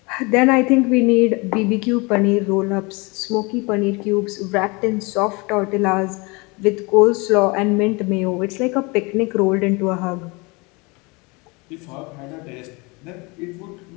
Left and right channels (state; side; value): quieter; right; 27.2 dB